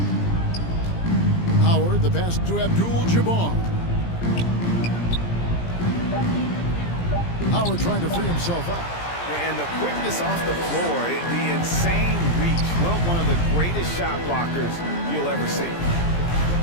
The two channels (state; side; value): late; right; 17 ms